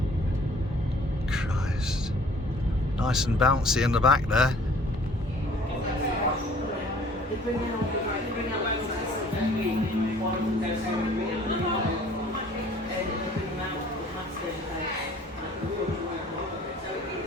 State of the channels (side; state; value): both; normal; correlation 0.54